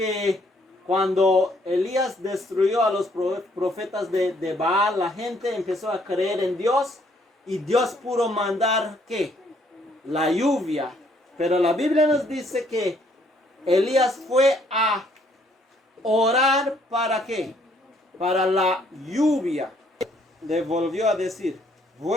cuando Elías destruyó a los profetas de Baal, la gente empezó a creer en Dios, y Dios pudo mandar ¿qué? La lluvia. Pero la Biblia nos dice que Elías fue a orar ¿para qué? Para la lluvia. Le volvió a decir:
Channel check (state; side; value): normal; both; correlation 0.66